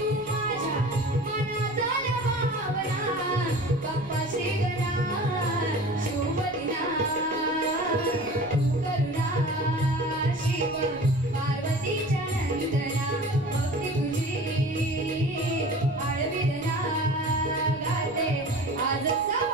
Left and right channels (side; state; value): right; noise; rumble, 22 dB below the sound